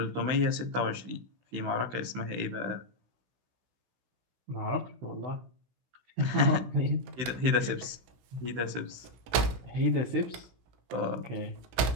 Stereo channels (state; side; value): late; left; 16 ms